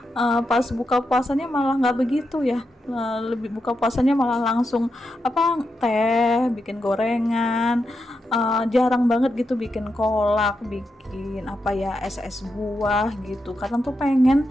Pas buka puasanya malah nggak begitu ya. Lebih buka puasanya malah langsung apa, teh, bikin gorengan, jarang banget gitu bikin kolak, bikin apa ya, es buah gitu. Kadang tuh pengen,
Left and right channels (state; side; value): normal; both; correlation 0.86